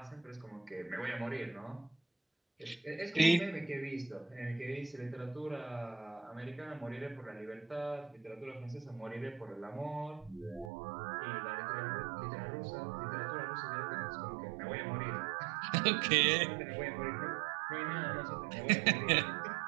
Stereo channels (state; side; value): drops out; left; at 10.7 s